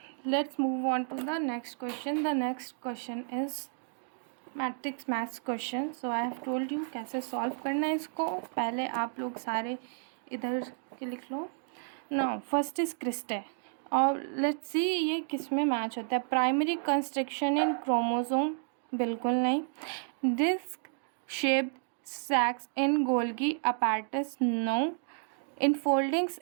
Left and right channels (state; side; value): silent; left; 57 dB below the other